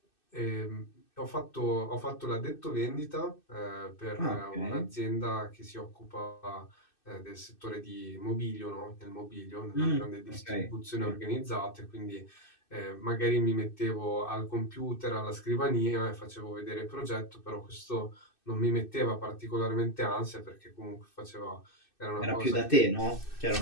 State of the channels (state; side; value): late; right; 2.6 ms